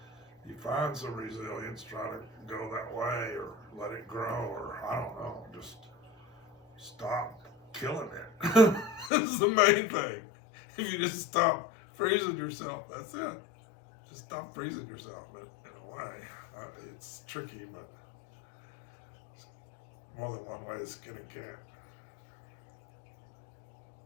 if you find some resilience, try to go that way or let it grow, or I don't know, just stop killing it. That's the main thing. If you just stop freezing yourself, that's it. Just stop freezing yourself in a way. It's tricky, but more than one way to skin a cat.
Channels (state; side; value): drops out; right; at 9.1 s